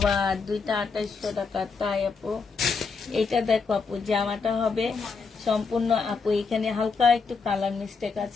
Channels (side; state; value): right; quieter; 5.0 dB